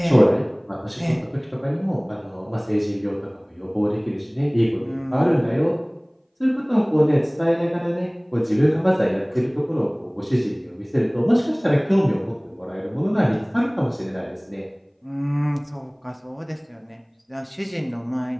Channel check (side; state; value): both; identical; correlation 1.00